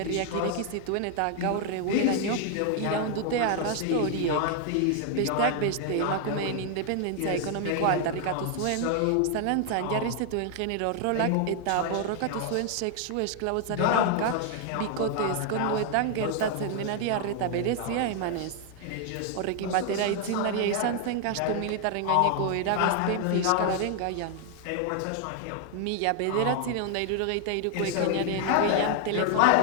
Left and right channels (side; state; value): both; different; correlation 0.00